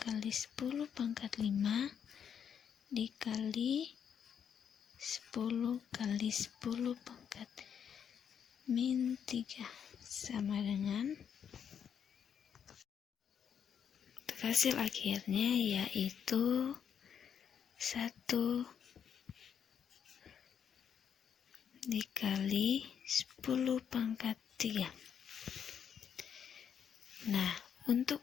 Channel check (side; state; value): right; quieter; 8.0 dB